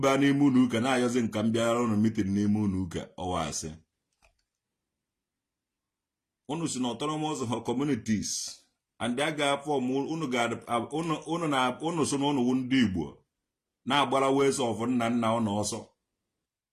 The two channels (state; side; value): identical; both; correlation 1.00